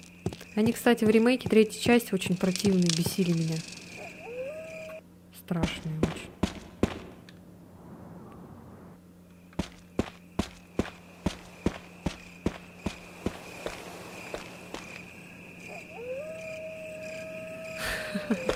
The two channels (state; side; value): identical; both; correlation 1.00